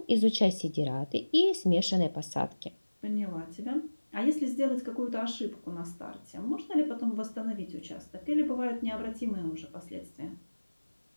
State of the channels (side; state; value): both; inverted; correlation -1.00